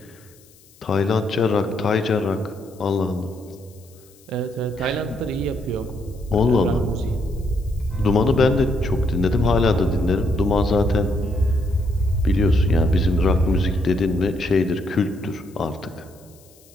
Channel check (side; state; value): left; noise; hiss, 28 dB below the sound